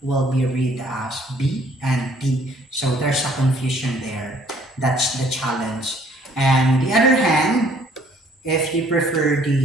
will be read as B and D, so there's a confusion there. That's the challenge. And the other hand, if you prefer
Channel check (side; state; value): both; normal; correlation 0.60